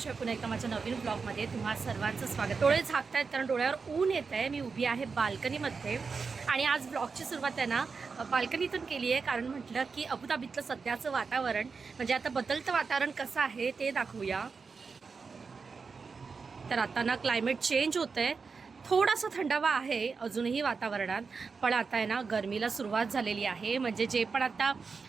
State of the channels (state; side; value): quieter; left; 5.0 dB